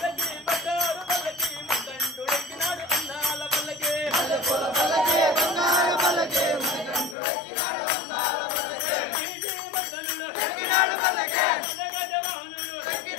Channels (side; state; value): right; drops out; at 7.2 s